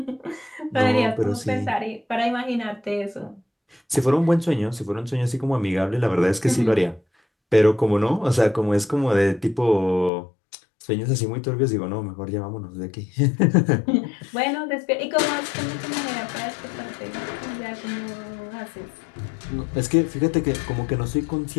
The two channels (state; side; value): drops out; right; at 10.1 s